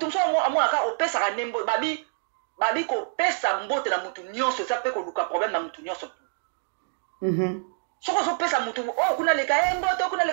mso amona ka opesa ka nembo babi ko pesa mbote na mutu nyonso ça peut ko luka problème na mutu nyonso soko so pesa mutu kuna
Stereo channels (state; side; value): silent; left; digital silence